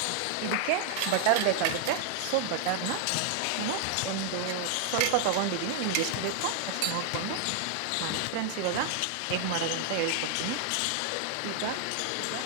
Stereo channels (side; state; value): both; different; correlation 0.00